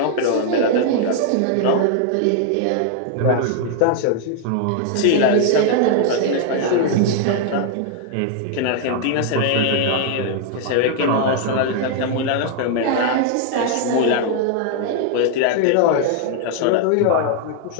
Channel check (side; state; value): both; different; correlation 0.00